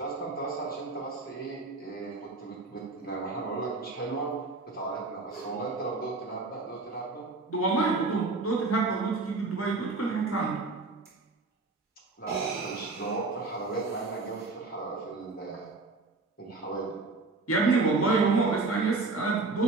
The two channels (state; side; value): quieter; left; 3.7 dB